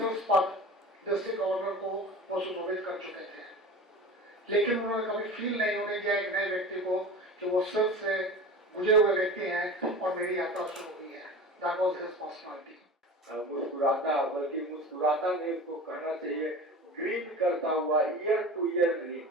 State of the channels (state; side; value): normal; both; correlation 0.35